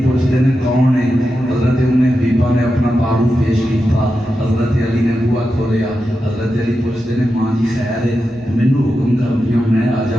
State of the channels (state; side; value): normal; both; correlation 0.89